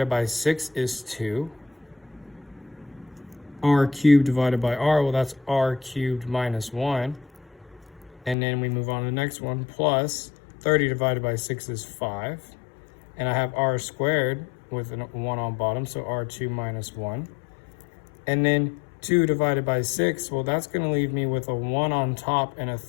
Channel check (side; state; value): right; drops out; at 8.3 s